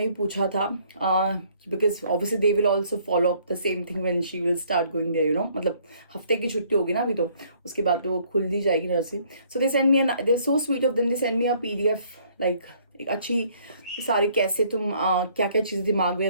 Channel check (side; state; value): both; inverted; correlation -0.63